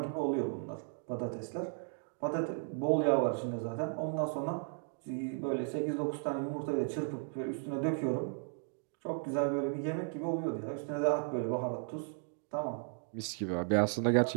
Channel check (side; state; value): left; silent; 54 dB below the other